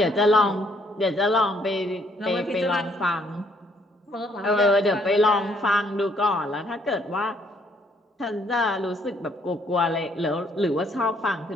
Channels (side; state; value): both; normal; correlation 0.67